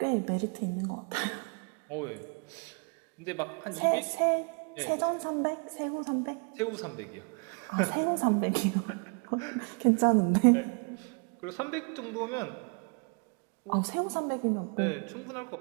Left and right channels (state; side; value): quieter; left; 36.7 dB